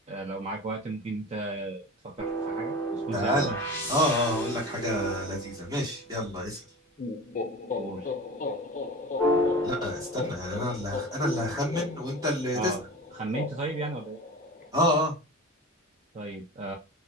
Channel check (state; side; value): normal; both; correlation 0.34